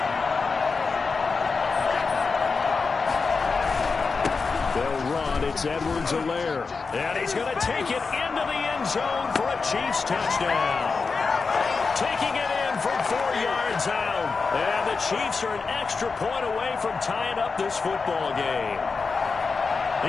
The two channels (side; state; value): right; quieter; 4.6 dB